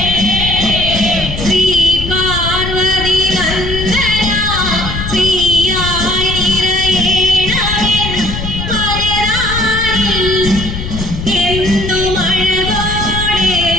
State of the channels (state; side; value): noise; left; rumble, 6 dB below the sound